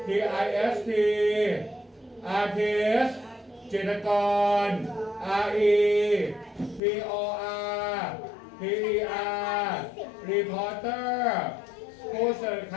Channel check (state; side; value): drops out; right; at 6.8 s